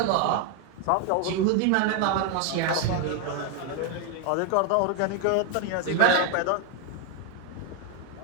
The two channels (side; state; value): both; different; correlation 0.01